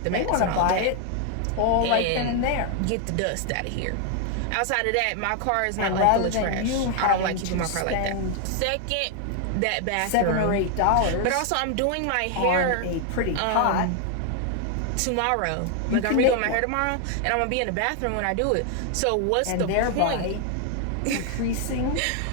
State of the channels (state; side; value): different; both; correlation 0.00